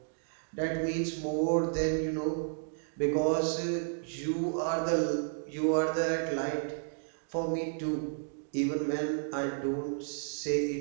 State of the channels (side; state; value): left; silent; digital silence